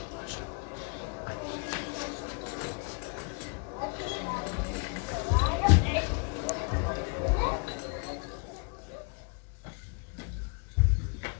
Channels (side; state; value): right; quieter; 37.0 dB